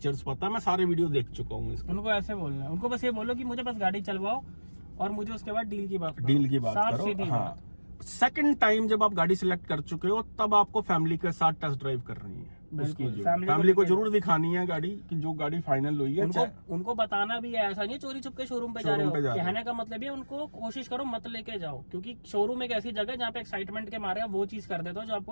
पता है, मैं सारे वीडियो देख चुका हूँ इसके। उनको ऐसे बोलना है, उनको बस ये बोलो कि मुझे बस गाड़ी चलवाओ और मुझे उसके बाद डील की बात करो। डील की बात साफ करो। सीधी हाँ, बात। सेकंड टाइम जब आप गाड़ी सिलेक्ट कर चुके हो तब आपको फैमिली के साथ टेस्ट ड्राइव करनी है। उसकी बिल्कुल, जो फैमिली फैमिली को लेके जरूर दिखानी है गाड़ी की जो गाड़ी फाइनल हुई है। उनको बताना भी है, ऐसा नहीं है चोरी छुप के शोरूम पे जा रहे शोरूम पे जा हो। रहे हो। कहने का मतलब ये उनको कोशिश करो मत लेके जाओ, क्योंकि शोरूम एक ऐसी जगह है जहाँ पे एक्साइटमेंट के मारे आप वो चीज कर देते हो जो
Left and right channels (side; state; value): both; inverted; correlation -1.00